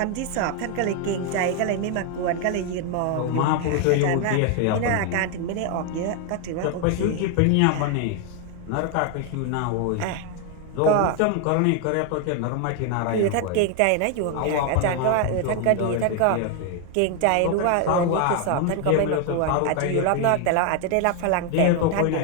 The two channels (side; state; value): both; different; correlation 0.01